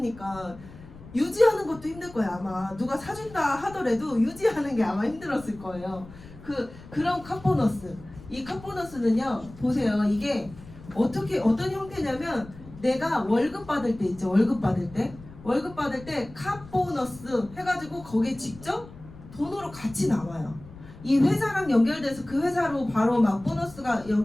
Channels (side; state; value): left; noise; rumble, 18 dB below the sound